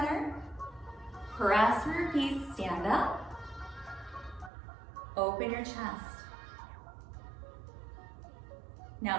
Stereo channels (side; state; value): left; drops out; at 4.5 s